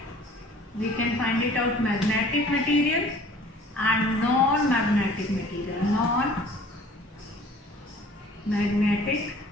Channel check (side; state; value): both; normal; correlation 0.50